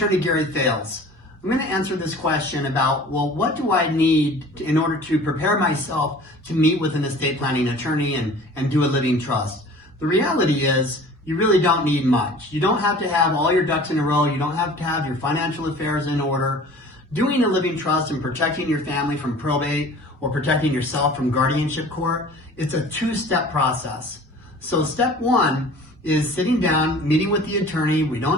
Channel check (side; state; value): both; normal; correlation 0.45